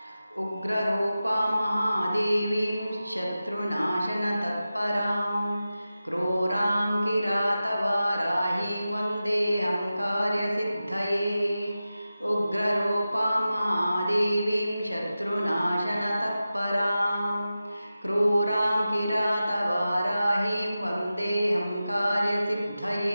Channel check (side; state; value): both; inverted; correlation -0.94